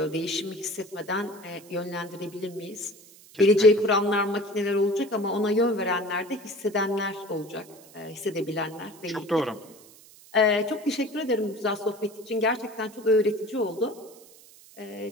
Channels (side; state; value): right; noise; hiss, 23 dB below the sound